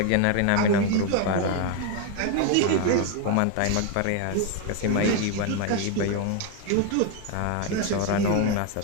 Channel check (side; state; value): both; different; correlation 0.01